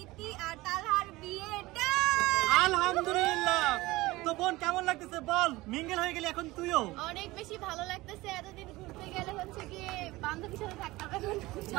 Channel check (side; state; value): left; quieter; 19.8 dB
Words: ইতি আর তালহার বিয়েটা। আলহামদুলিল্লাহ। তো বোন কেমন লাগতেছে বল? মিঙ্গেল হয়ে গেলি এখন তুইও। অনেক বেশি ভালো লাগতেছে। এতদিন ঘুরতে গেলে হচ্ছে কি বান্ধবীর সাথে থাকতাম,